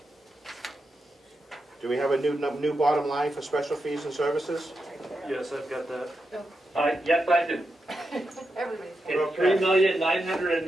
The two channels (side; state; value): both; normal; correlation 0.87